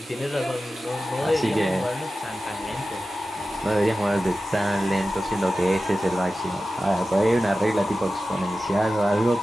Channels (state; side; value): normal; both; correlation 0.94